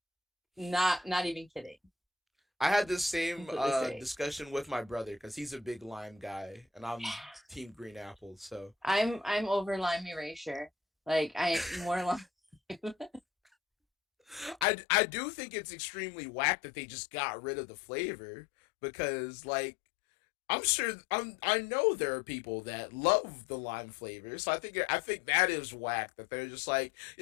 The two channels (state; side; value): drops out; right; at 14.7 s